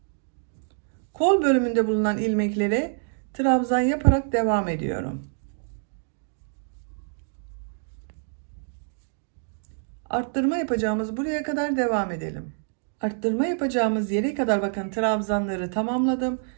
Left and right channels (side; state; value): left; silent; digital silence